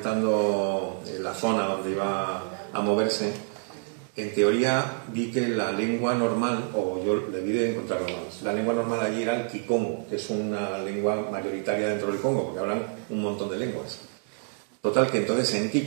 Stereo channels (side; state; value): left; silent; 57 dB below the other